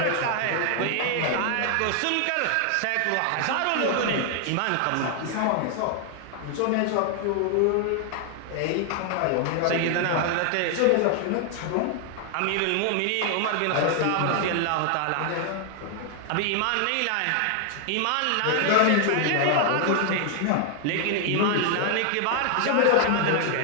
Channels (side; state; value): both; different; correlation 0.00